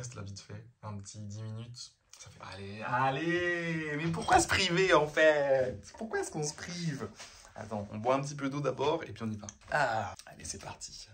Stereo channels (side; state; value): both; identical; correlation 1.00